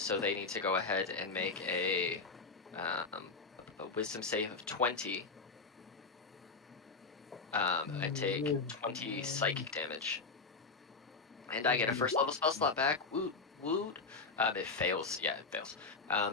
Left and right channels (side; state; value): right; quieter; 4.2 dB